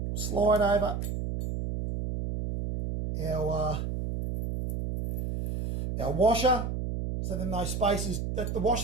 slide over our washer, so then those spaces, the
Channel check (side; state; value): right; noise; hum, 3 dB below the sound